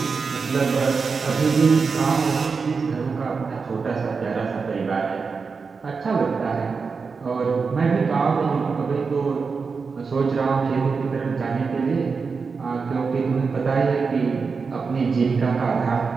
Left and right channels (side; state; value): left; quieter; 5.0 dB